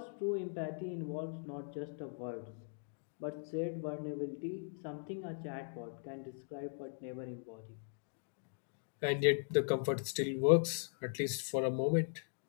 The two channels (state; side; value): silent; right; digital silence